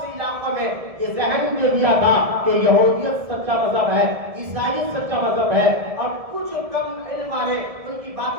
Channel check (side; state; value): left; late; 1.7 ms